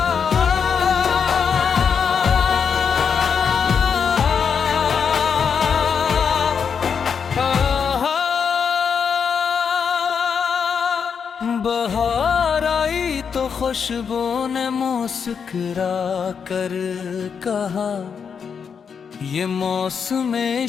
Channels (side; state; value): right; quieter; 6.6 dB